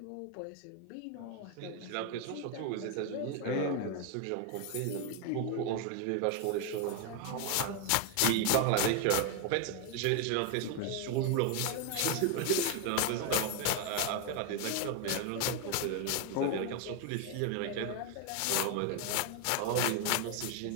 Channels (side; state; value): both; different; correlation 0.01